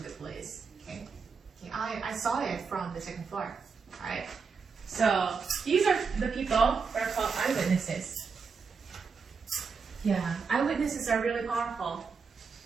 the police, okay? I saw it from the second floor, all right? So these are the people who are called eyewitnesses. Yeah, eyewitnesses are really powerful.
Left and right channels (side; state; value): left; quieter; 5.4 dB